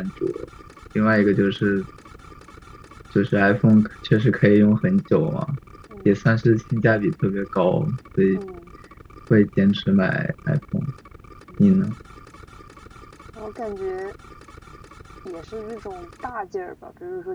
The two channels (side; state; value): both; identical; correlation 1.00